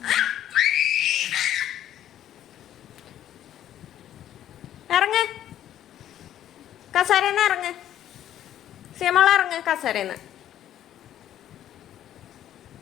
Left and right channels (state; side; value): quieter; right; 11.5 dB